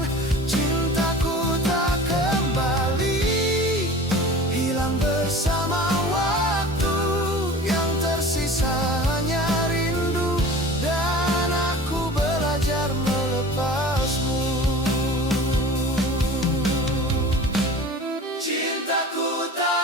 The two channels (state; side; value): normal; both; correlation 0.39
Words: Cintaku tak kembali, hilang bersama waktu. Yang tersisa hanya rindu, dan aku belajar melepasmu. Cintaku